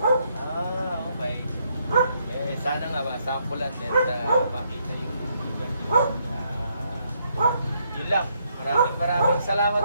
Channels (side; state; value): both; inverted; correlation -0.74